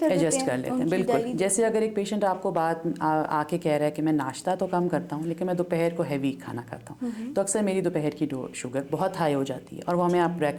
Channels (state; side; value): identical; both; correlation 1.00